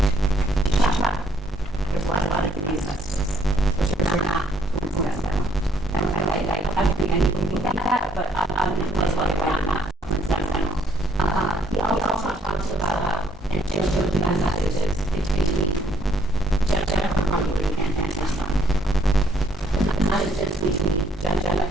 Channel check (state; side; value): normal; both; correlation 0.65